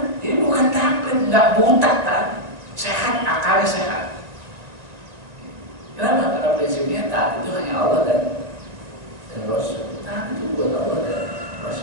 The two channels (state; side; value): late; left; 1.9 ms